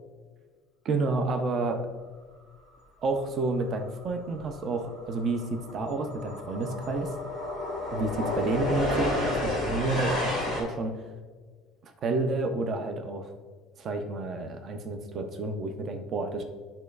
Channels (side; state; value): both; normal; correlation 0.49